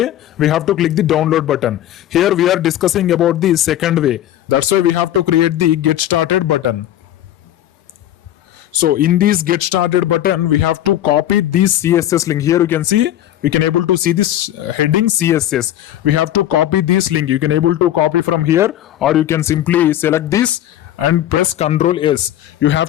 we have to click the download button. Here we are discussing about the second way. That's why we have to create the get started button. So in this get started button we have to copy this CSS link. Here you can see we can able to see this heading CSS. We have to copy this link. You can able to copy from here, or you can simply select this and press Ctrl S. You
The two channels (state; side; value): quieter; right; 12.4 dB